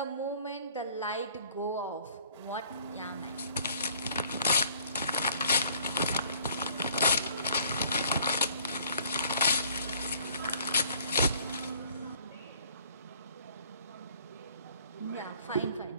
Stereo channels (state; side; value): inverted; both; correlation -0.58